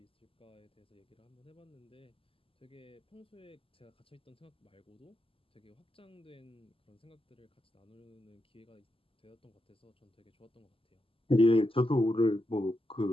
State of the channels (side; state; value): right; late; 0.26 ms